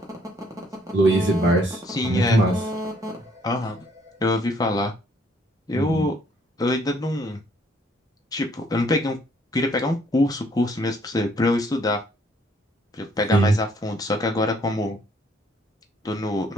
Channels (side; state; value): both; normal; correlation 0.65